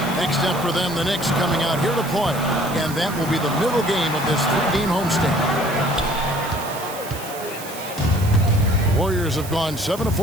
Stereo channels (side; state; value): right; noise; hiss, 13 dB below the sound